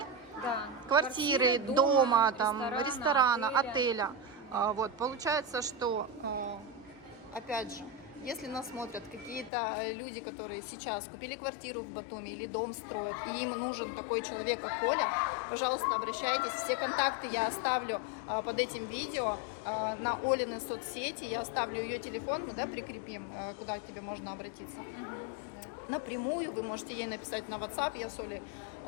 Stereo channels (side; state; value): right; drops out; at 9.5 s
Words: Да. Квартиры, дома, там, ресторана, отеля. отеля. Вот, получается, что, опять же, если нас смотрят какие-то люди, которые сейчас купили квартиру в Батуми или дом строят, и им нужен такой человек, как Оля, пожалуйста, обращайтесь. Все контакты я оставлю под этим видео на Олины соцсети. Я оставлю ее телефон, мы, да, прикрепим, куда к тебе можно обратиться. Напрямую вы можете ей написать на WhatsApp. Я с Олей